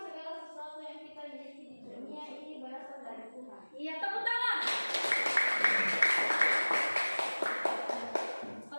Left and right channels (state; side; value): inverted; both; correlation -1.00